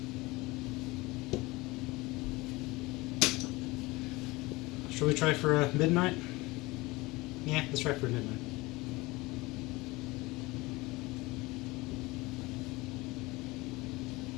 Shall we try for a midnight? Yeah, let's try for a midnight.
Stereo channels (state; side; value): quieter; right; 22.0 dB